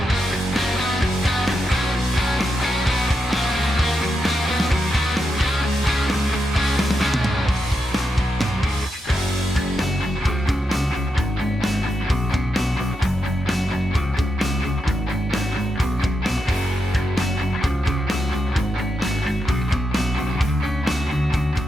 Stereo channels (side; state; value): both; normal; correlation 0.85